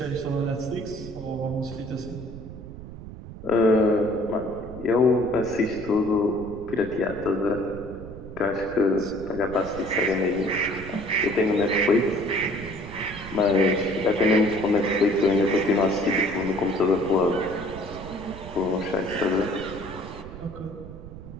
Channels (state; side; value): noise; right; rumble, 13 dB below the sound